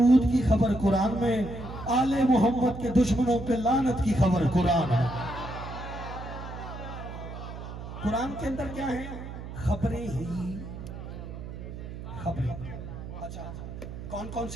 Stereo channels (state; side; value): noise; right; hum, 10 dB below the sound